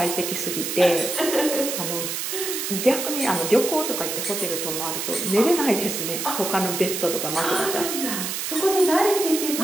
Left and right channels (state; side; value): noise; right; hiss, 3 dB below the sound